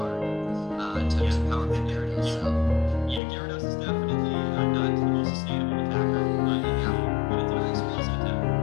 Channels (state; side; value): drops out; right; at 3.2 s